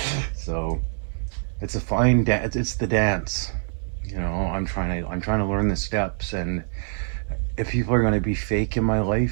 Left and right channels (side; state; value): left; silent; 62 dB below the other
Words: So it's a fine dance. It's the dance. I'm trying to learn the steps, and if people are going to be fake in my